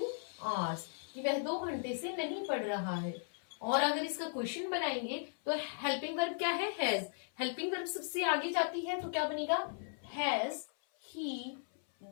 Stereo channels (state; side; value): silent; right; 53 dB below the other